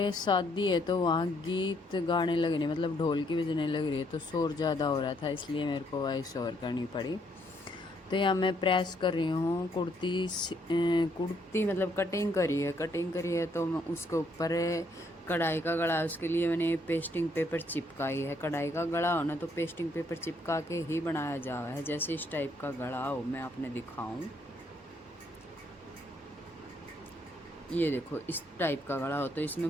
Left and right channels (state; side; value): normal; both; correlation 0.70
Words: शादी है तो वहाँ गीत गाने लग रहे, मतलब ढोल की बजने लग रही है, तो शोर ज़्यादा हो रहा था, इसलिए मेरे को वॉइस ओवर करनी पड़ी। तो यहाँ मैं प्रेस कर रही हूँ कुर्ती, मतलब कटिंग करी है तो मैं उसके ऊपर कढ़ाई का गला, उसके लिए मैंने पेस्टिंग पेपर चिपकाई है। कढ़ाई का गला हो ना तो पेस्टिंग पेपर चिपका के ही बनाया जा रहा है। जैसे इस टाइप का गला हो, मैं आपने दिखाऊं, ये देखो इस टाइप का गला हो। तो